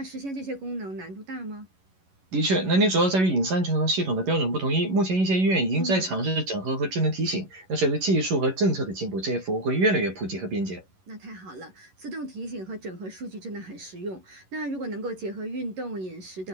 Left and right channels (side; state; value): left; late; 11 ms